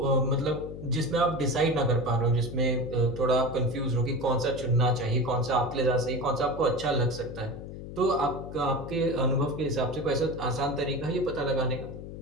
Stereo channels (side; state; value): left; noise; hum, 10 dB below the sound